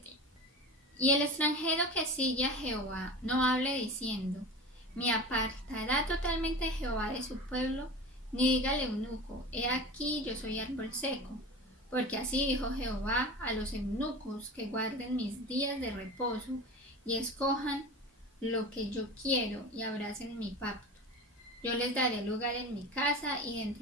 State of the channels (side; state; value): both; normal; correlation 0.32